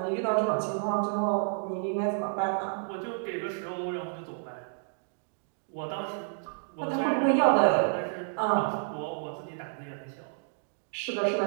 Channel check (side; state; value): left; silent; digital silence